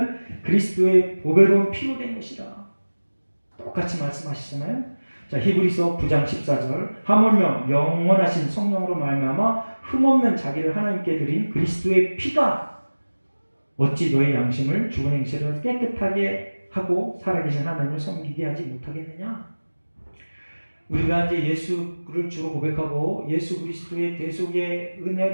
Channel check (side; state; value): both; inverted; correlation -1.00